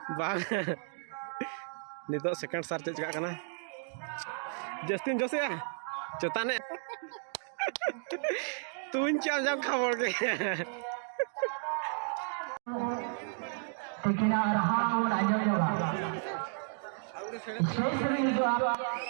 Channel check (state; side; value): silent; left; 56 dB below the other